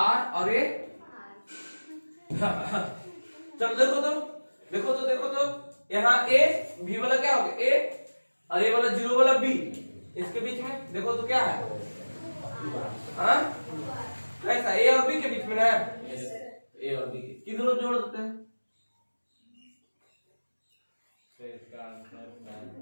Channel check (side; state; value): both; inverted; correlation -1.00